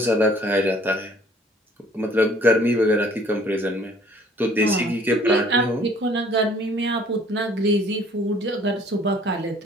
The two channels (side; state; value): both; normal; correlation 0.56